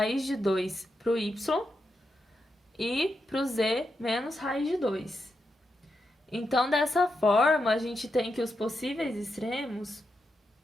de 2 para o y e para o z menos raiz de 2. Então, dessa forma, a gente tem que os possíveis extremos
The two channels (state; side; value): normal; both; correlation 0.86